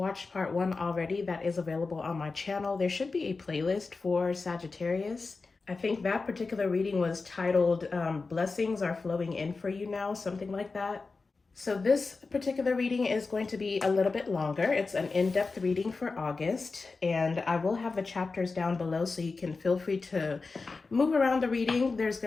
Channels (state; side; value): quieter; right; 4.1 dB